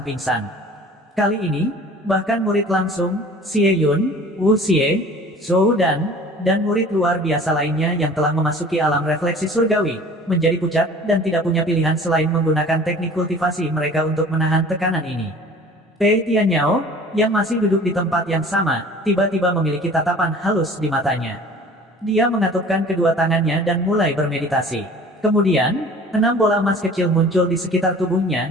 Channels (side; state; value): both; normal; correlation 0.46